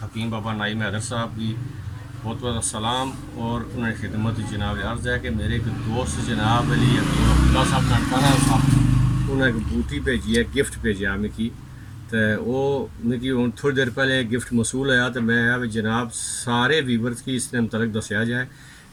हकीम बाबा नाइम हैदर साहब की बहुत बहुत सलाम और उन्हें खिदमत जनाब अर्ज़ है कि मेरे एक दोस्त जनाब अली अब्दुल्ला साहब ननकाना साहब उन्हें एक बूटी भेजी है, गिफ्ट भेजा मिगी। तो वो मिगी हूँ थोड़ी देर पहले गिफ्ट मसूल होया तो मैं जनाब सारे वीवर्स की इसने मतलब दसिया जाए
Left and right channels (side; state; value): both; identical; correlation 1.00